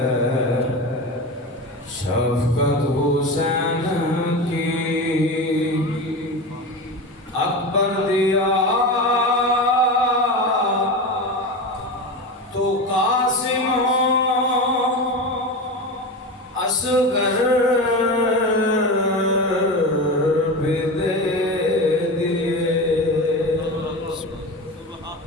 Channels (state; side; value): normal; both; correlation 0.24